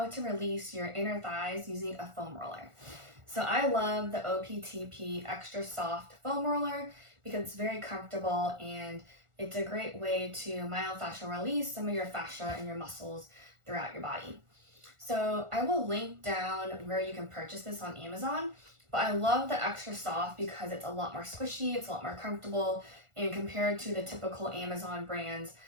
to release your inner thighs using a foam roller. So I love the OPTP Extra Soft Foam Roller because it's very comfortable and it's a great way to myofascial release some of your fascia and your muscles throughout your body. So I will link down where you can purchase this on Amazon, but I love the Extra Soft because it's a lot more squishy, it's a lot more comfortable, and compared to the typical Amazon brands,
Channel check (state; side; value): late; left; 1.4 ms